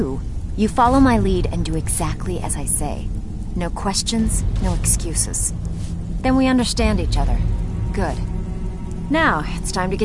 you follow my lead and do exactly as I say. No questions, no excuses. Then we understand each other. Good. Now, it's time to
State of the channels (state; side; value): identical; both; correlation 1.00